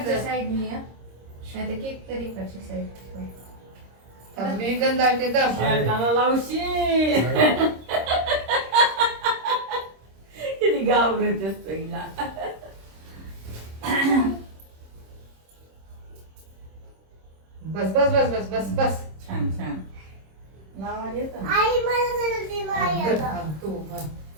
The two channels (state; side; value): late; left; 26 ms